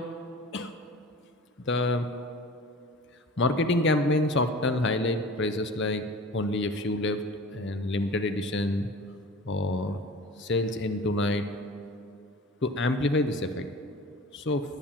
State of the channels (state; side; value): normal; both; correlation 0.40